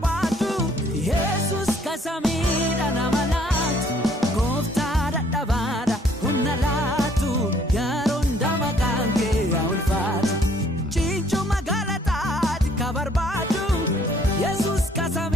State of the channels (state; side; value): normal; both; correlation 0.62